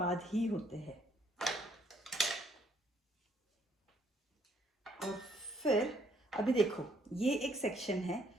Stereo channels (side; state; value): both; normal; correlation 0.68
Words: ही होते हैं। और फिर अभी देखो, ये एक सेक्शन है,